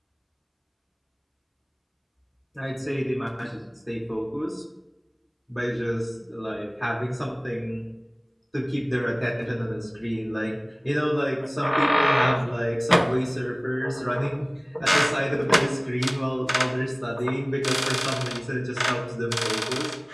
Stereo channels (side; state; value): both; identical; correlation 1.00